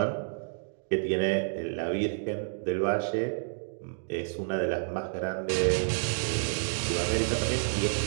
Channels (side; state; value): left; silent; digital silence